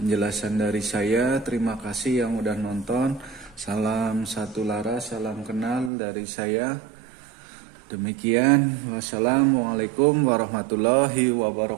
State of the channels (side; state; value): left; drops out; at 5.9 s